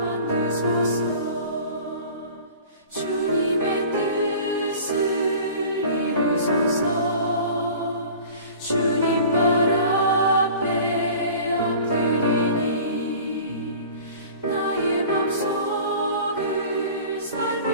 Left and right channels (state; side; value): inverted; both; correlation -0.42